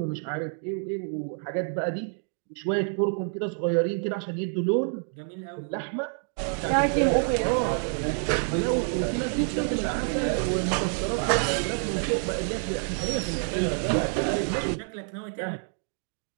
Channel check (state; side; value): silent; left; 56 dB below the other